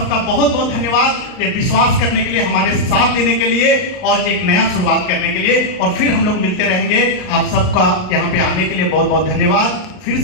बहुत बहुत धन्यवाद ये विश्वास करने के लिए, हमारे साथ देने के लिए और एक नया शुरुआत करने के लिए। और फिर हम लोग मिलते रहेंगे। आप सबका यहाँ पे आने के लिए बहुत बहुत धन्यवाद। फिर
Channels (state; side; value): late; right; 39 ms